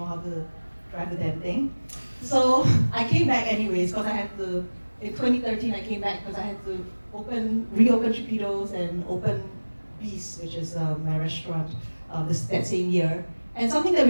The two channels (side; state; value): both; inverted; correlation -1.00